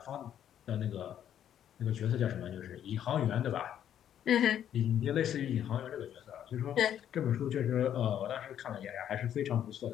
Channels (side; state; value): right; quieter; 10.1 dB